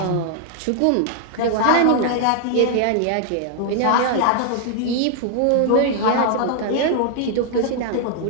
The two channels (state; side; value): different; both; correlation 0.00